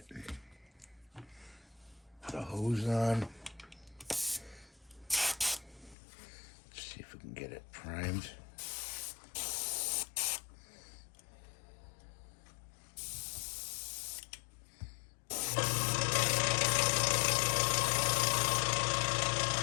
Put a hose on. Let's see if we can get it primed.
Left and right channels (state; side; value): drops out; right; at 6.0 s